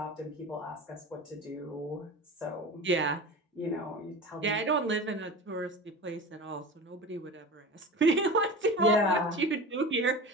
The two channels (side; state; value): both; normal; correlation 0.32